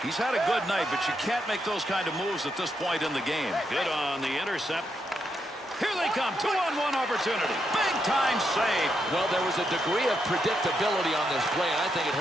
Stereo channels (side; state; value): both; normal; correlation 0.81